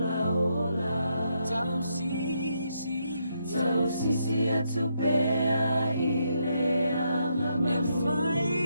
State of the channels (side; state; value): both; inverted; correlation -0.78